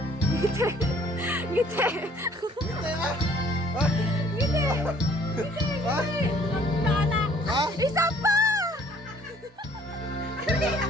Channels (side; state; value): both; normal; correlation 0.59